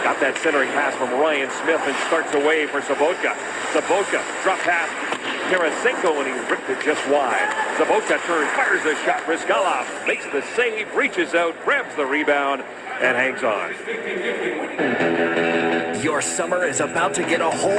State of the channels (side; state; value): both; identical; correlation 1.00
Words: got that centering pass from Ryan Smith and starts away for Sobotka. Sobotka drop pass Tarasenko, and he ripped it just wide. Sobotka turns, fires a shot. Brizgalov makes the save, reaches out, grabs the rebound, and hangs on. Your summer is about to get a